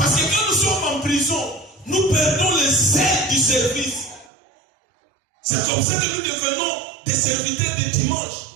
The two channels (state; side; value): drops out; left; at 4.3 s